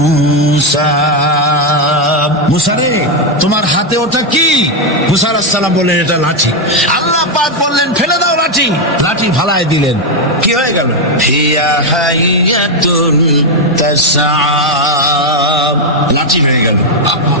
মুসা রে তোমার হাতে ওটা কি? মুসা আলাইহিস সালাম বললেন, এটা লাঠি। আল্লাহ পাক বললেন, ফেলে দাও লাঠি। লাঠি ফালায় দিলেন। কি হয়ে গেল? হিয়া হাইয়াতুন তাসআ, লাঠি হয়ে গেল।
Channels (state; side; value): normal; both; correlation 0.04